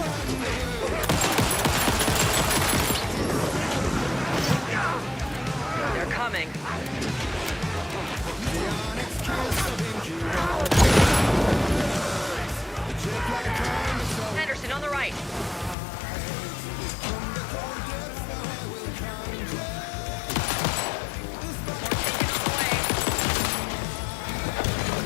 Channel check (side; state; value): right; drops out; at 15.8 s